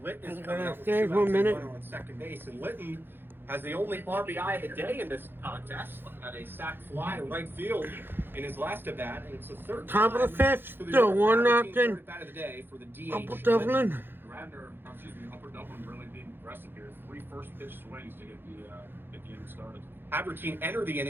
Litton is I'm coming gonna out with stay 2 for a outs and minute. runner on second base, and Litton has the only RBI of the day in this contest. Had a sac fly to right field in his last at bat, and it's the third Top of the time fifth, for the still Havertine 1-0. third at bat of the day for the DH. Upper Dublin. Upper Dublin really being aggressive here. 3 first pitch swings to get the inning started. Havertine entered the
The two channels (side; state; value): left; late; 0.10 ms